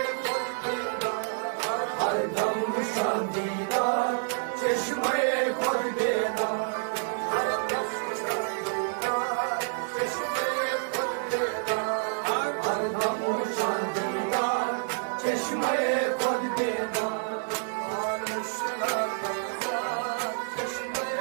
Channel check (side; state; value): left; silent; digital silence